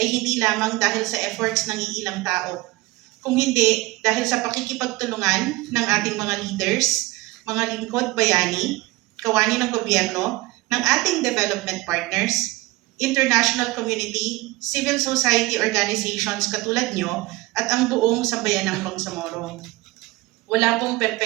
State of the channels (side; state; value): left; quieter; 20.6 dB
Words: hindi lamang dahil sa efforts ng iilang tao, kung hindi dahil sa pakikipagtulungan ng ating mga leaders, mga lingkod bayani, kawani ng gobyerno, ng ating development partners, international community, civil society organizations katulad nyo, at ang buong sambayanang Bangsamoro. Wala pong